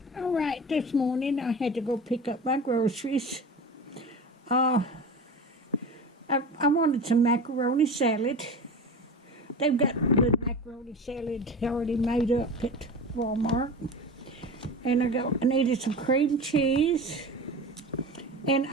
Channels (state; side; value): normal; both; correlation 0.31